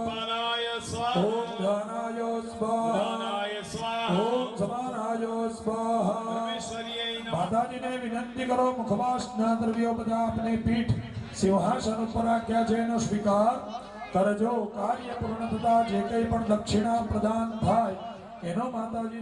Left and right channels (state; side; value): identical; both; correlation 1.00